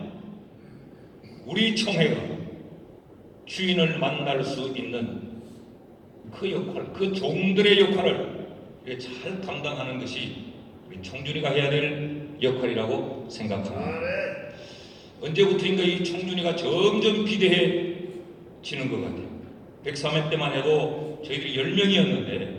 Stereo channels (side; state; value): both; identical; correlation 1.00